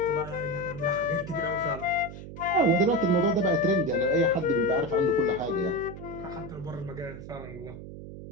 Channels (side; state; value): right; noise; hum, 12 dB below the sound